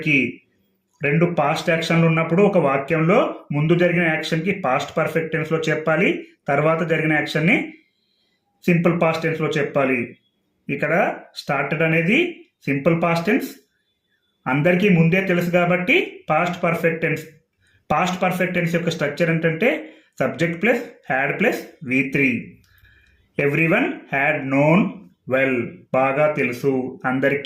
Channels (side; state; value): both; identical; correlation 1.00